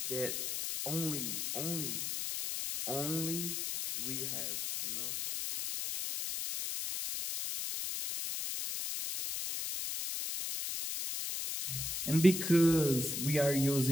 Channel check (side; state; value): left; noise; hiss, 3 dB below the sound